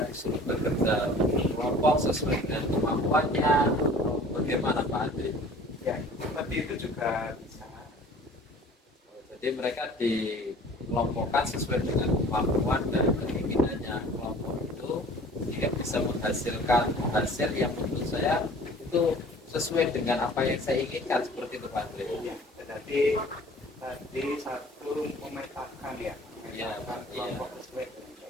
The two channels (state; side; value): normal; both; correlation 0.48